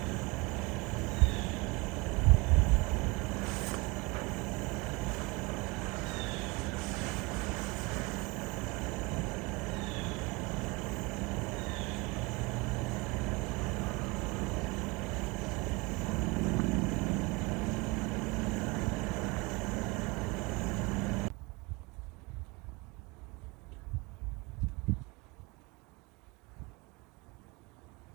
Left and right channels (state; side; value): quieter; left; 25.3 dB